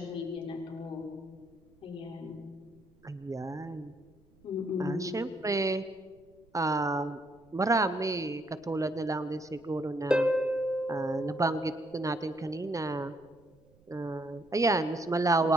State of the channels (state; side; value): noise; right; rumble, 30 dB below the sound